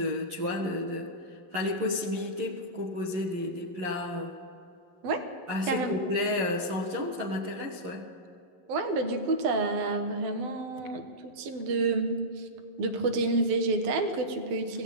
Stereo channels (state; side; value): late; left; 11 ms